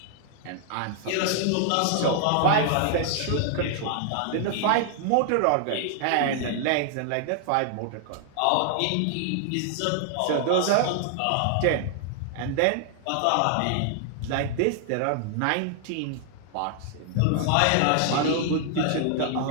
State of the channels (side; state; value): both; different; correlation 0.00